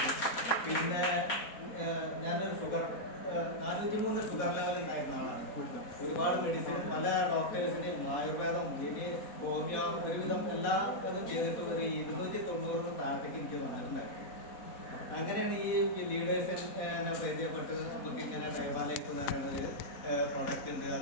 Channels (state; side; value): late; right; 4.1 ms